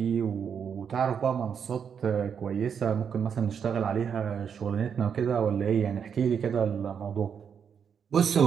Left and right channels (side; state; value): left; quieter; 7.3 dB